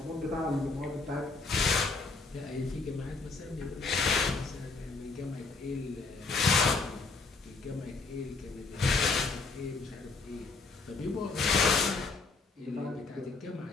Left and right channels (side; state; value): right; quieter; 4.1 dB